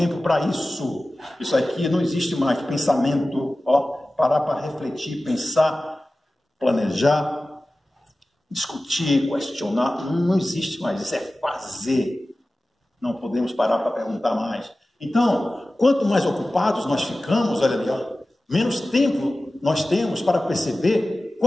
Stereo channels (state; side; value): normal; both; correlation 0.96